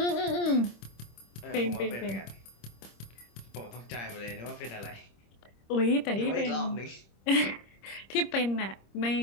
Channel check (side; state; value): right; late; 26 ms